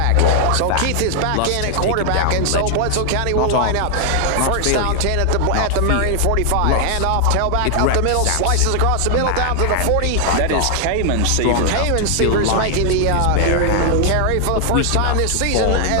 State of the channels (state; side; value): different; both; correlation 0.00